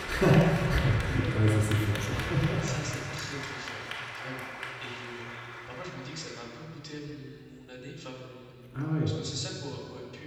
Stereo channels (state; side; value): identical; both; correlation 1.00